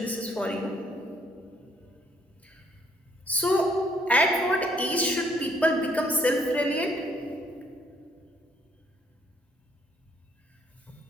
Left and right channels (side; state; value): both; normal; correlation 0.66